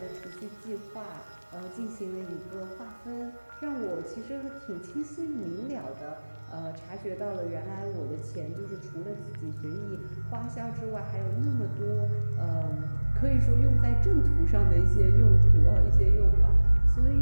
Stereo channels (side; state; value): both; inverted; correlation -1.00